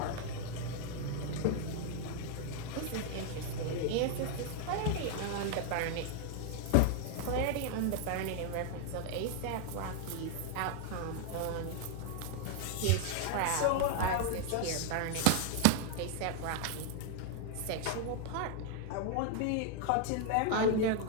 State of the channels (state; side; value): different; both; correlation 0.00